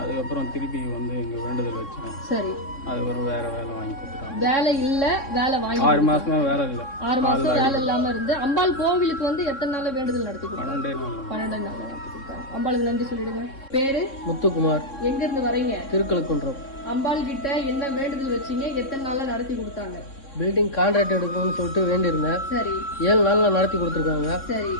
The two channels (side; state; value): right; late; 3.6 ms